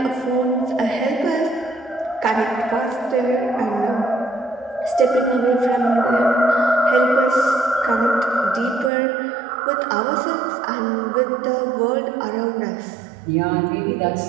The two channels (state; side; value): drops out; left; at 8.9 s